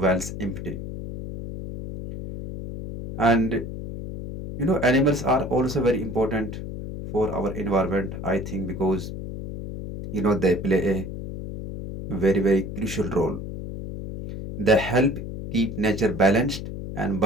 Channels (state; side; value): noise; left; hum, 8 dB below the sound